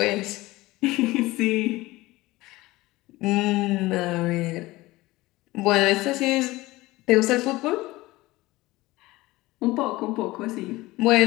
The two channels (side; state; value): right; quieter; 19.4 dB